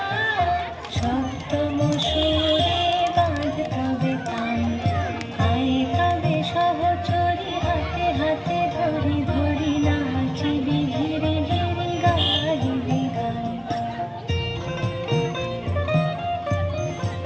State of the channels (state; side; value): identical; both; correlation 1.00